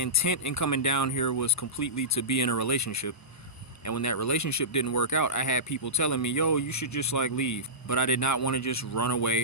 in coming down here was completely to be in a relationship. And when that relationship didn't work out, I had people telling me, yo, you should just like leave. But I did not want to just run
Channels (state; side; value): normal; both; correlation -0.19